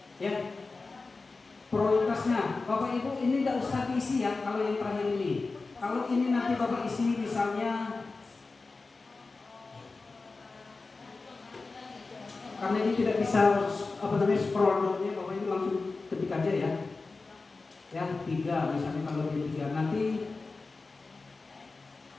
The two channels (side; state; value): right; quieter; 3.8 dB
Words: ya prioritasnya Bapak Ibu ini tidak usah diisi ya. Kalau yang terakhir ini, kalau ini nanti Bapak isi misalnya, karena ini tidak bisa scroll down-nya, Bapak Ibu langsung ketik aja ya. Ya 3 misalnya, kalau dia 3 nanti